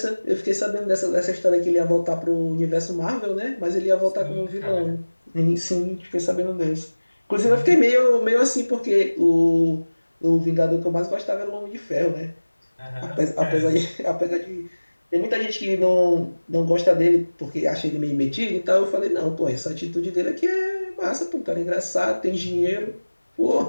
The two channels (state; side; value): inverted; both; correlation -1.00